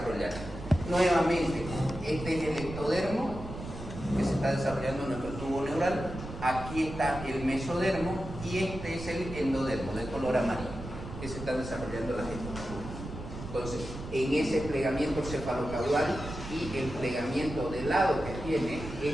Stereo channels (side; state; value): right; noise; rumble, 10 dB below the sound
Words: Nuevamente, este es el ectodermo que se está desarrollando en nuestro tubo neural. Aquí está el mesodermo y este es el endodermo de color amarillo que se está desarrollando las estructuras. Entonces, en ese plegamiento cefalocaudal y el plegamiento de lado que tiene